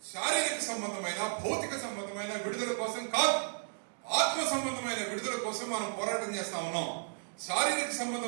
శారీరక సంబంధమైన, భౌతిక సంబంధమైన విడుదల కోసం కాదు, ఆత్మ సంబంధమైన విడుదల కోసం మనం పోరాటం చేస్తా ఉన్నాం. శారీరక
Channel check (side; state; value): left; silent; digital silence